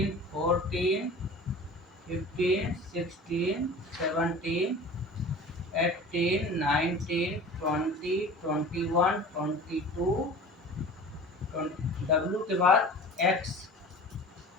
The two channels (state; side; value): normal; both; correlation 0.39